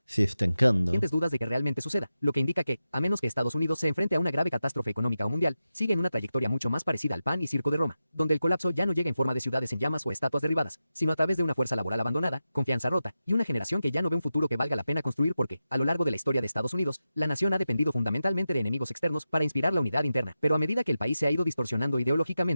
se estancando. Dudas de que realmente suceda, lo que indica que, a menos que Estados Unidos se enfrente a una grave catástrofe económica o mundial, sigue en una trayectoria mucho más parecida al pan y circo de Roma, donde el colapso ya no llega en forma de ciudades en llamas o estatuas derribadas, sino a través de una fuerza laboral abandonada, confianza rota, y una generación que ya no ve un futuro que valga la pena construir porque, a lo largo de la historia de Estados Unidos, la nación ha dependido fundamentalmente de enemigos externos para inspirar la unidad interna. Pero a medida que el país se ha ido distorsionando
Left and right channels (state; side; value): inverted; both; correlation -0.91